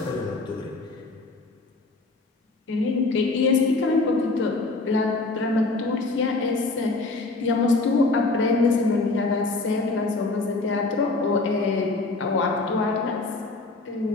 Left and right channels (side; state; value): right; quieter; 3.4 dB